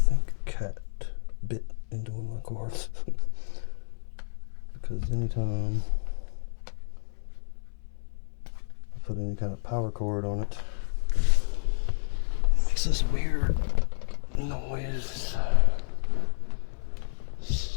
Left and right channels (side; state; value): right; silent; digital silence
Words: a cat bit into one of my cords. Because anytime I put any kind of power cord on it, it makes this weird noise.